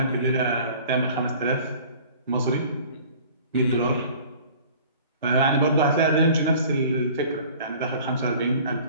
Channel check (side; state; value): both; inverted; correlation -0.47